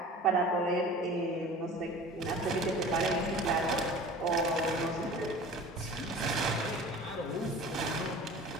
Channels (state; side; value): normal; both; correlation 0.41